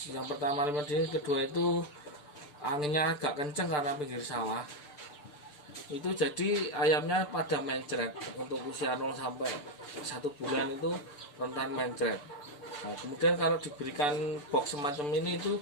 yang pertama lima dingin, kedua itu anginnya agak kenceng karena pinggir sawah. Itu jadi ayamnya pada mencret. Untuk usia 0 sampai 1 bulan itu rentan mencret. Nah, kemudian kalau diberikan box semacam ini itu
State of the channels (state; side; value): late; right; 6.8 ms